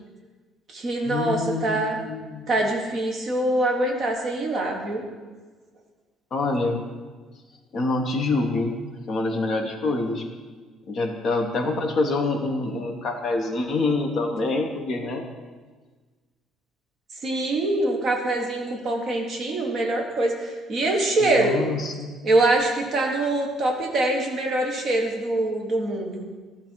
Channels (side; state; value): both; normal; correlation 0.67